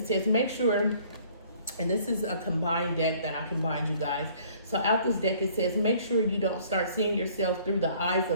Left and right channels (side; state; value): both; inverted; correlation -0.56